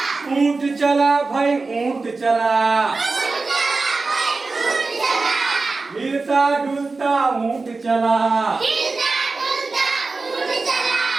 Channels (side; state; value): left; quieter; 3.9 dB